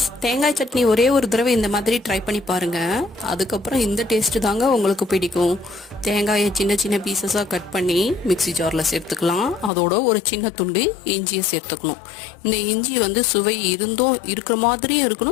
தேங்காய் சட்னி ஒரே ஒரு தடவை இந்த மாதிரி ட்ரை பண்ணி பாருங்கள். அதுக்கப்புறம் இந்த டேஸ்ட்டு தாங்க உங்களுக்கு பிடிக்கும். தேங்காயை சின்ன சின்ன பீசஸாக கட் பண்ணி மிக்ஸி ஜாரில் சேர்த்துக்கலாம். அதோட ஒரு சின்ன துண்டு இஞ்சியை சேர்த்துக்கணும். இந்த இஞ்சி சுவை இருக்கிற மாதிரியும்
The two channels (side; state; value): right; drops out; at 9.7 s